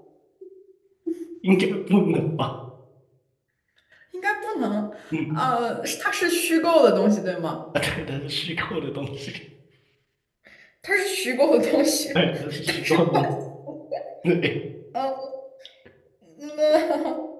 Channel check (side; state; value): both; identical; correlation 1.00